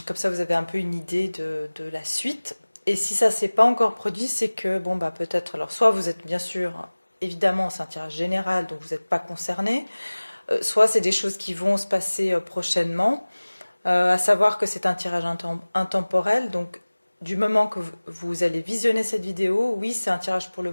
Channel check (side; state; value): both; inverted; correlation -1.00